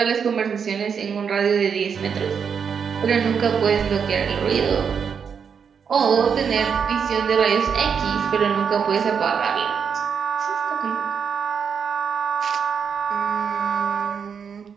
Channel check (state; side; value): quieter; left; 6.7 dB